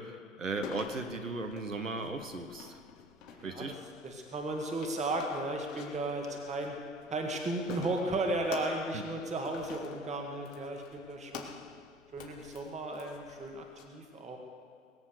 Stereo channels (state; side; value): normal; both; correlation 0.47